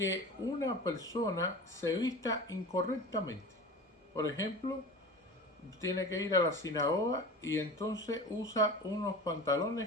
una persona se vista incorrectamente. Por ejemplo, tiene que ir a la sinagoga y entonces usa unos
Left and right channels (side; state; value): both; normal; correlation 0.35